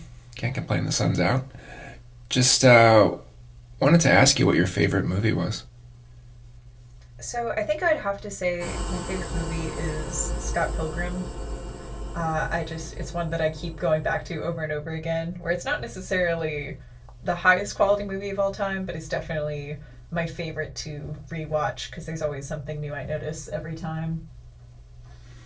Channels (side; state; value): both; identical; correlation 1.00